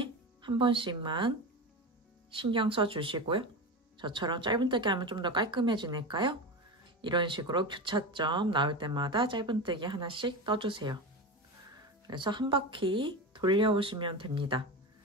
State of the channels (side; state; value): both; normal; correlation 0.23